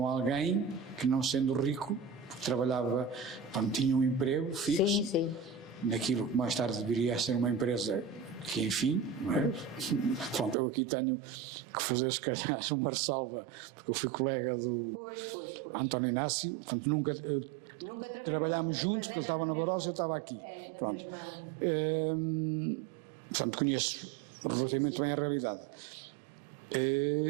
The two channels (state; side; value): drops out; left; at 10.6 s